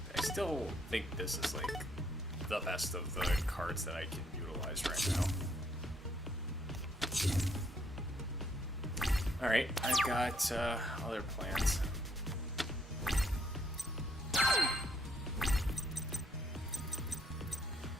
I still think this is like the best of the cards that I can utilize right now. Alright, I've got other plans.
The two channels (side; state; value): both; normal; correlation 0.70